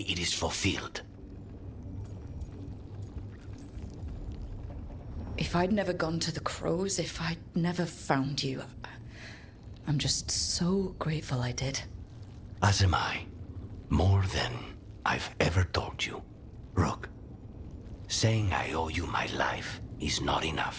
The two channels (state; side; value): identical; both; correlation 1.00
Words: it is fulfilled. If I'd never gone to the Crows, if I'd never found you, I'm just so grateful I did. As am I. More than I've ever told you. Rook, saying I owe you my life is not